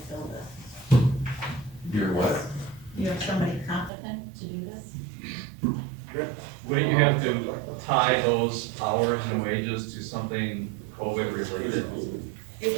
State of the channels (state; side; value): drops out; left; at 3.9 s